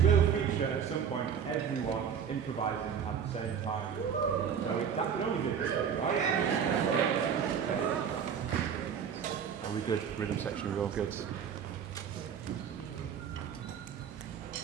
will feature at some point everyone improvising at the same time. So that could only be a good thing, right? Are we good? Rhythm section, we're all good.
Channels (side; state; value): left; quieter; 7.7 dB